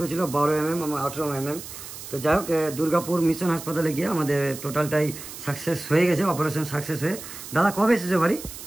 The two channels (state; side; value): noise; right; hiss, 12 dB below the sound